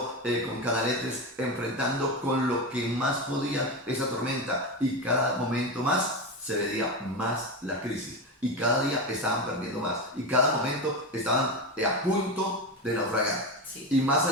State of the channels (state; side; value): normal; both; correlation 0.18